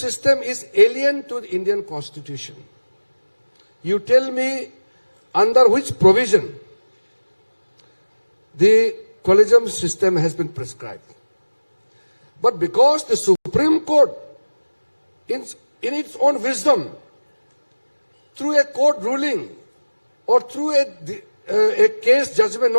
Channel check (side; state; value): both; inverted; correlation -1.00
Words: is alien to the Indian Constitution. You tell me under which provision the collegium system has been prescribed. But because the Supreme Court, in its own wisdom, through a court ruling or through a case judgment